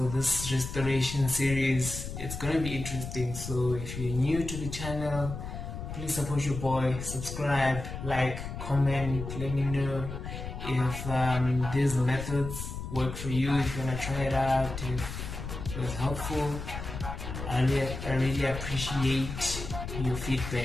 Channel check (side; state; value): left; noise; rumble, 7 dB below the sound